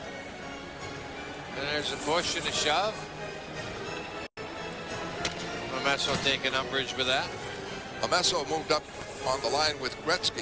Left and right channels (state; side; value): identical; both; correlation 1.00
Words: And there's a push and a shove. Bomesso taking umbrage with that. Bomesso moved up on the line with